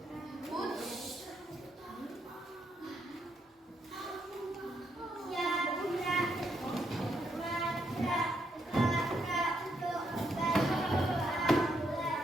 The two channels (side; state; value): both; normal; correlation 0.77